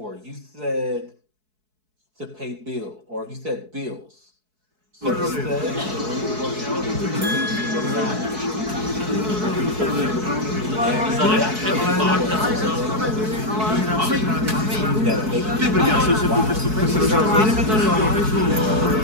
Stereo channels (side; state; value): left; late; 4.6 ms